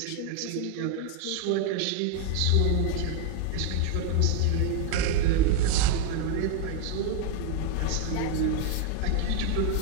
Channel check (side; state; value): both; different; correlation 0.01